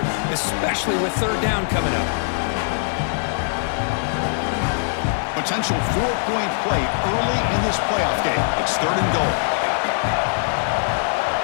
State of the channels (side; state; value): right; silent; digital silence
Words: especially with 3rd down coming up. Potential 4-point play early in this playoff game. It's 3rd and goal.